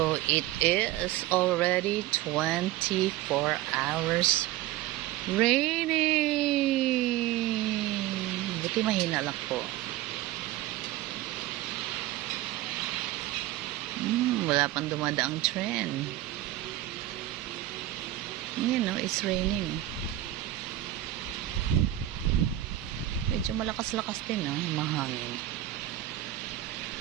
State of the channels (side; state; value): left; quieter; 14.7 dB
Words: it is already 24 hours raining. Buti mahina lang po. Wala pang dumadaang trend. You know, it's raining. Medyo malakas-lakas din, no? Humahangin.